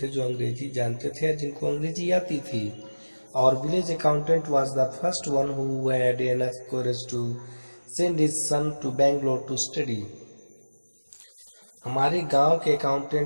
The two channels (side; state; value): both; inverted; correlation -1.00